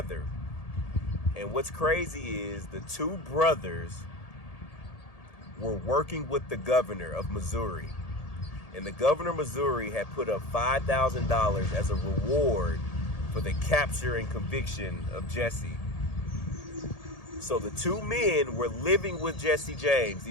And what's crazy is the two brothers were working with the governor of Missouri. And the governor of Missouri had put up $5,000 as a reward for the capture and conviction of Jesse. So the two men were living with Jesse James,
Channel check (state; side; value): late; right; 1.8 ms